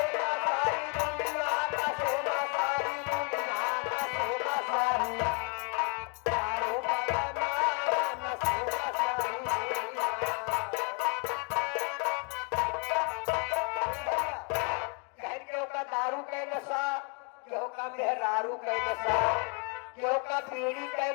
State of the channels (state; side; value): quieter; right; 31.3 dB